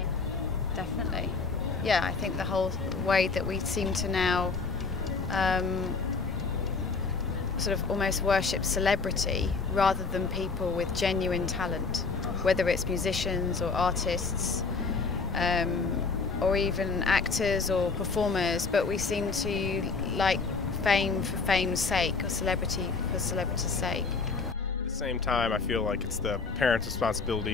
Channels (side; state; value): right; quieter; 4.6 dB